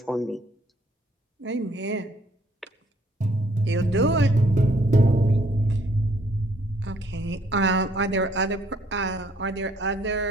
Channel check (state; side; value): normal; both; correlation 0.65